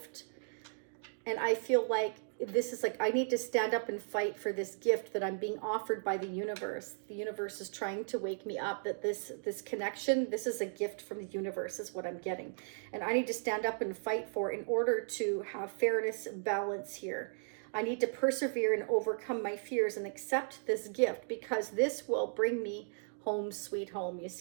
And I feel like this is like, I need to stand up and fight for this gift that I'm being offered by the universe. The universe is trying to wake me up that this connection, this is a gift from the universe is what I'm getting. And I need to stand up and fight for in order to have fairness, balance here. I need to persevere and overcome my fears and accept this gift, because this will bring me home sweet home. You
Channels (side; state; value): left; silent; digital silence